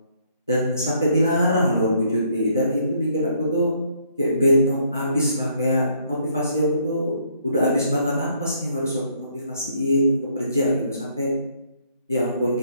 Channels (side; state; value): both; inverted; correlation -0.68